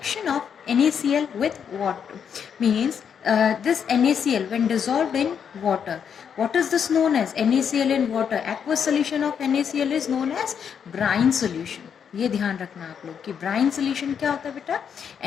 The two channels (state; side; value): quieter; right; 7.5 dB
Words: of NaCl with water. Means this NaCl when dissolved in water. What is this known as? NaCl in water. Aqueous solution of NaCl is known as brine solution. ये ध्यान रखना आप लोग कि brine solution क्या होता है बेटा?